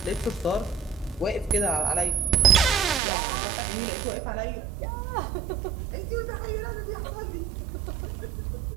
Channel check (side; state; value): left; drops out; at 3.0 s